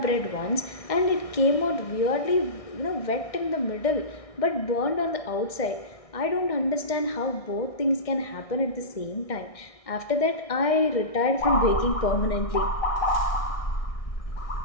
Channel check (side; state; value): right; late; 1.6 ms